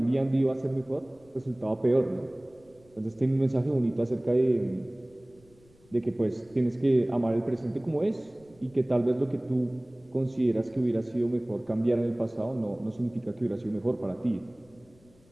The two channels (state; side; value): noise; left; rumble, 29 dB below the sound